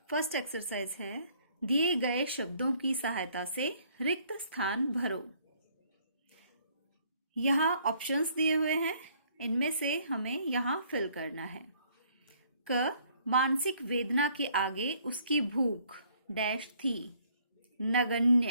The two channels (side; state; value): both; inverted; correlation -0.63